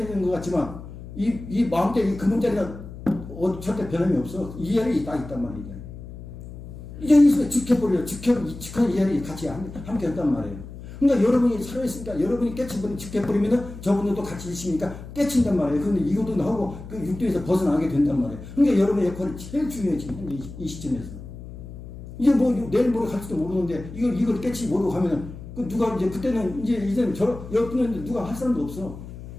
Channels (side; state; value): left; noise; hum, 13 dB below the sound